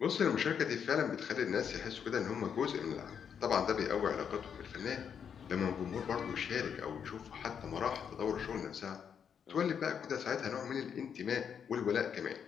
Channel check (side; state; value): right; quieter; 7.6 dB